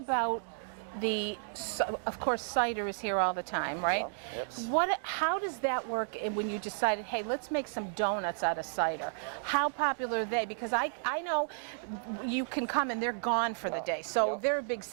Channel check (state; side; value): silent; left; digital silence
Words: of course, cider is here all the time, right? Yep. How does that work when you decided, hey, let's make some donuts out of cider? How popular are they? Because I know you can come and they're gone for the day, so they're a big